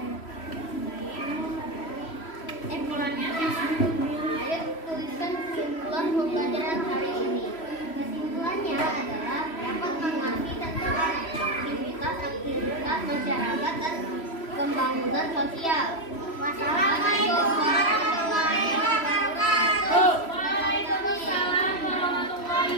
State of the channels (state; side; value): late; right; 3.0 ms